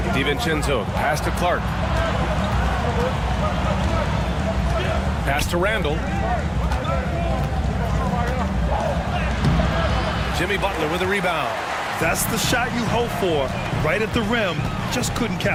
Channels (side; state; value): both; identical; correlation 1.00